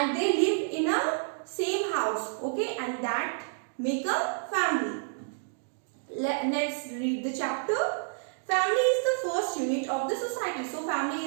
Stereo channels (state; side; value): silent; left; digital silence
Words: they live in a same house, okay? And that make a family. Let's read the chapter. Family is the first unit of the society. So family